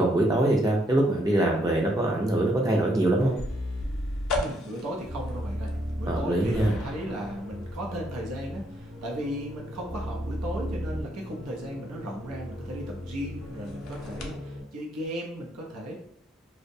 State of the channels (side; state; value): both; normal; correlation 0.73